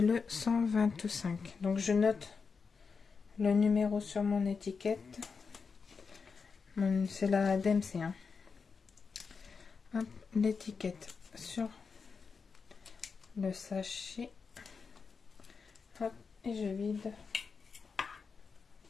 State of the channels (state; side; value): quieter; right; 5.2 dB